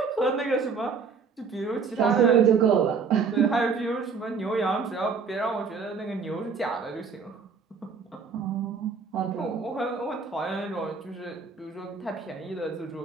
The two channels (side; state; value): left; quieter; 5.3 dB